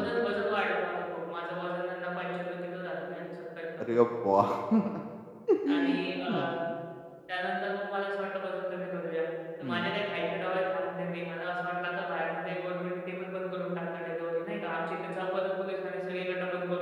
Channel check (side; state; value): both; identical; correlation 1.00